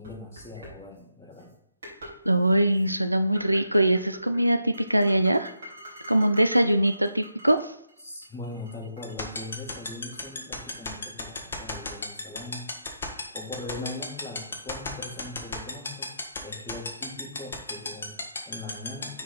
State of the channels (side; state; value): both; inverted; correlation -0.85